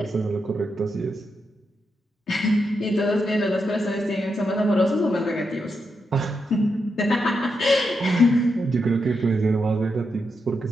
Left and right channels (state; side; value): normal; both; correlation 0.84